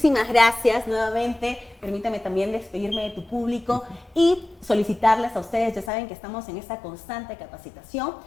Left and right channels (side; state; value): right; drops out; at 5.9 s